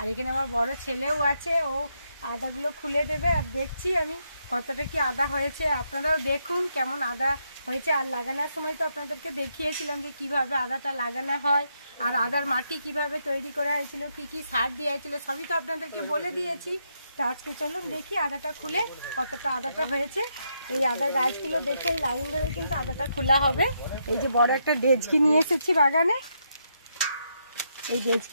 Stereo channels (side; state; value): both; inverted; correlation -0.79